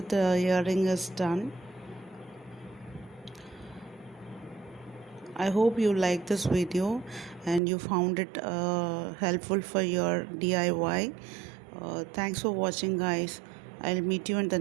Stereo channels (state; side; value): drops out; left; at 7.6 s